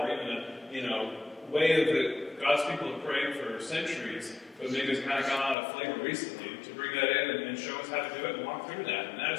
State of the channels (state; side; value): drops out; right; at 5.6 s